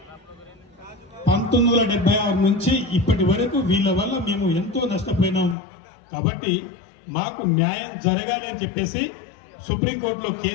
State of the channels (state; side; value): drops out; right; at 5.6 s